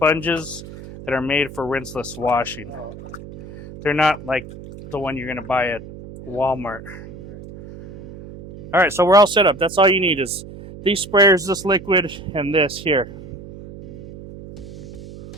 that are made for rinseless washing. They're not like the one you're gonna buy at Walmart. All right, so we're all set up. That's all you need is these sprayers, this liquid, and this here.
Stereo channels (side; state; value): right; noise; hum, 14 dB below the sound